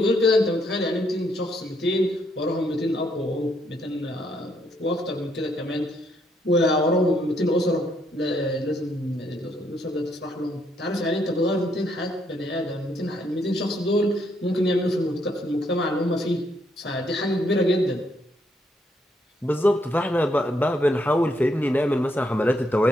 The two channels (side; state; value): both; normal; correlation 0.73